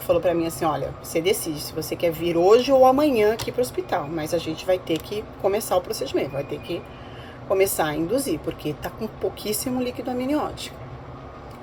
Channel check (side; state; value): both; identical; correlation 1.00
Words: falou pra mim assim, olha, você decide se você quer vir hoje ou amanhã aqui pro hospital, mas a gente vai ter que começar o procedimento, vai ter que começar a induzir, porque tá com pouquíssimo líquido amniótico.